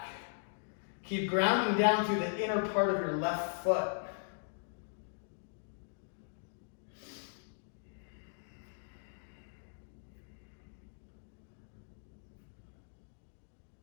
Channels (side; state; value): right; silent; digital silence